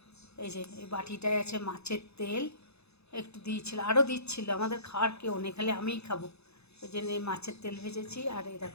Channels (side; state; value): right; late; 0.79 ms